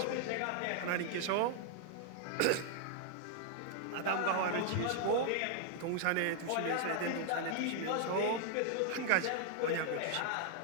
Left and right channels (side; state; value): both; different; correlation 0.00